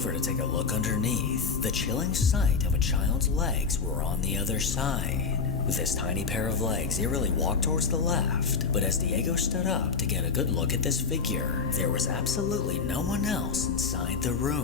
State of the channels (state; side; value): quieter; right; 5.2 dB